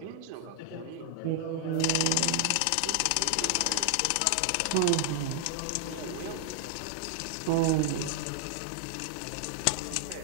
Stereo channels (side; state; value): both; different; correlation 0.00